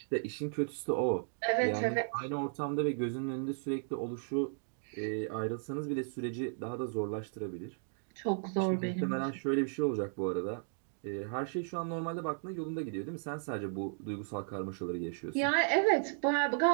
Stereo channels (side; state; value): left; silent; digital silence